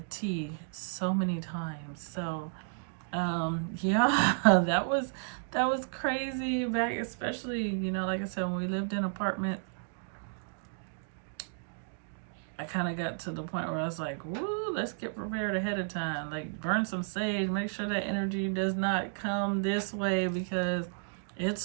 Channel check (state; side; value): silent; left; digital silence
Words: T so many times. So yeah, that was crazy back, especially, like I said, when we lived in apartments. I kind of got to the point where I was like, woo, let's get prepared ahead of time. Like, burn some sage, make sure that energy does not come this way because it's